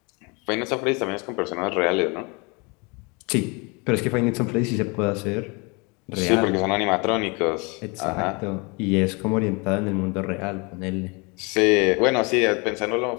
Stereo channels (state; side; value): quieter; right; 29.6 dB